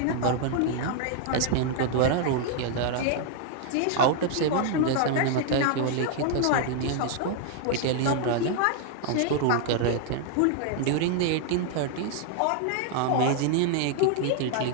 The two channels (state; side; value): different; both; correlation 0.00